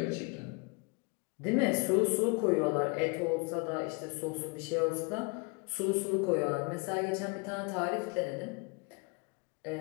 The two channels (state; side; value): quieter; right; 31.5 dB